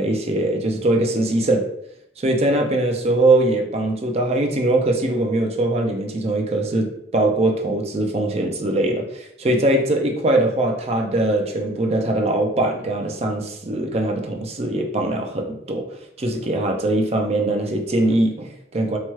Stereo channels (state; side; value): normal; both; correlation 0.55